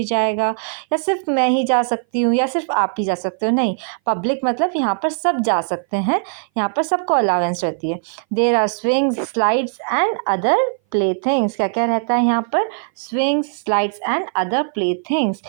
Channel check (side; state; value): left; silent; 59 dB below the other